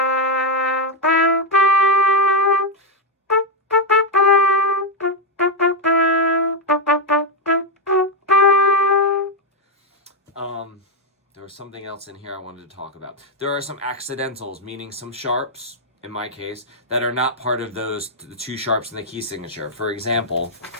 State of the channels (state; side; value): normal; both; correlation 0.04